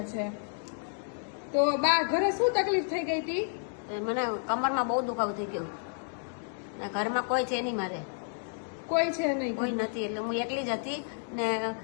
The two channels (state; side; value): silent; right; digital silence